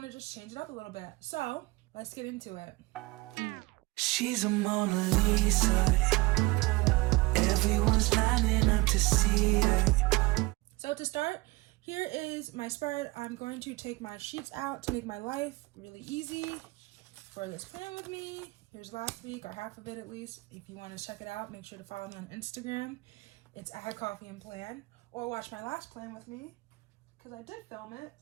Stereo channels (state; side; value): quieter; left; 22.4 dB